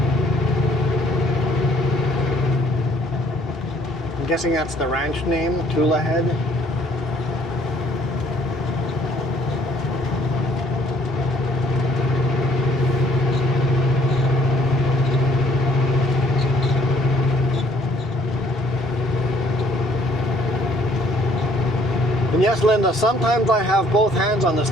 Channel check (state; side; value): normal; both; correlation 0.61